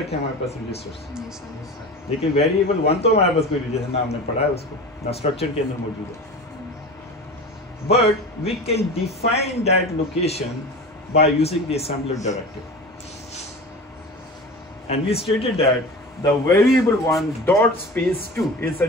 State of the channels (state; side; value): normal; both; correlation 0.33